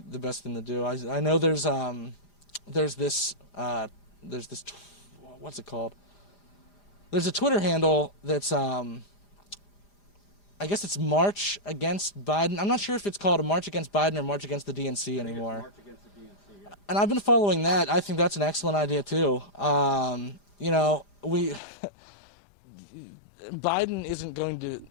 best thing to do. I know there's this what's it called? There's a Twitter handle that's I guess it's March Against Biden. I'm not sure if it's called a March Against Biden or March Against the DNC anymore. March Against the DNC, yeah. And I've been following that. I think that's an excellent idea too. You know, Biden isn't going to.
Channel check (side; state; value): right; late; 5.0 ms